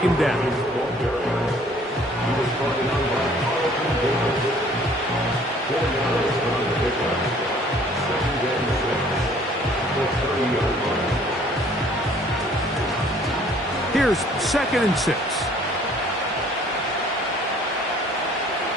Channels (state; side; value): normal; both; correlation 0.56